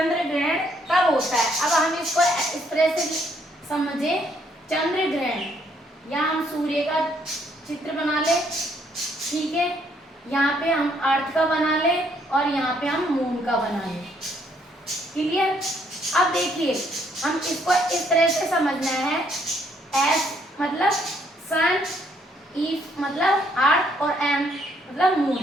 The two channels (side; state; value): both; normal; correlation 0.69